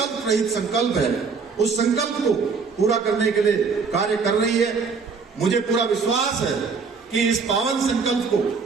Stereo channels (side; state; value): left; quieter; 5.2 dB